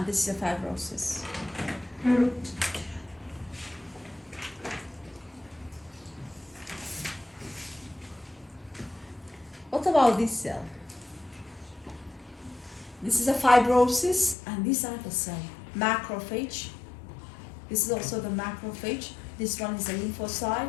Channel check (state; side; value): drops out; right; at 14.4 s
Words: this is a fibrosis. What about this cell? This is a fibrosis, and these are the cell. Macrophage. This is also the macrophage. This one is a